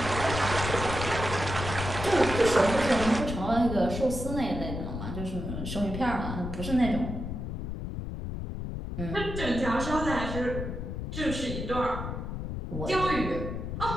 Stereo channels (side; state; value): left; noise; rumble, 5 dB below the sound